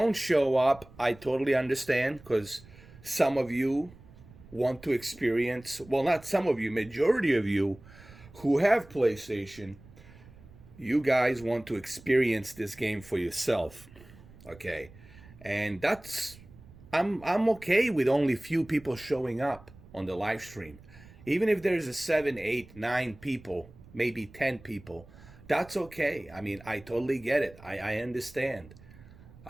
show up, I totally understand, because some of you want to experience, well, not some of you, majority of you who have PlayStation, you guys want to experience this game for yourself. Okay. And that's, I'm okay with only few people showing up on the live stream. Even if there's a 7, 8, 9 people, maybe 10 people, that's okay. I mean, I totally get it. I understand.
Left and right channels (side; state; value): right; noise; rumble, 21 dB below the sound